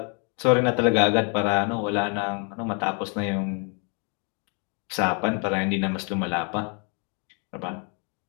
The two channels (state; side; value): quieter; right; 37.7 dB